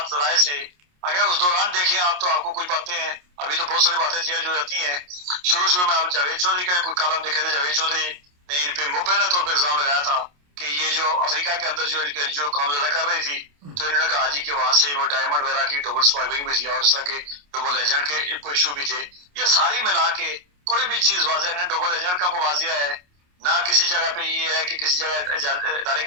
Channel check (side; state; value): left; late; 28 ms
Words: ذرائع سے اگر اس دوران دیکھیں آپ تو آپ کو کچھ باتیں ہیں, ابھی تو بہت ساری باتیں چینج ہو جاتی ہیں. شروع میں آپ جاوید چودھری کا کوئی کالم دیکھے تھے, جاوید چودھری نے ان پہ مبینہ طور پہ الزام لگایا تھا کہ یہ جو افریقہ کے اندر جو کام زیادہ کر رہی تھی تو انہوں نے کہا جی کہ وہاں سے وہ ڈائمنڈ وغیرہ کی ڈبل اسمگلنگ بھی تھی اور اس طرح کے ڈبل ایجنٹ کے کوئی ایشو بھی تھے. یہ ساری ملا کے کوئی بھی چیز واضح نہیں. ڈبل ایجنٹ کا کوئی واضح ہے نہ کسی جگہ پہ یہ ہے کہ کسی جگہ ادارے